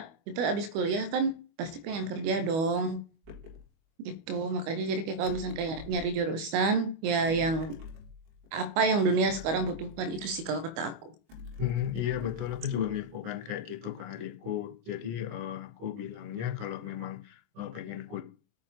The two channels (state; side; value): late; left; 25 ms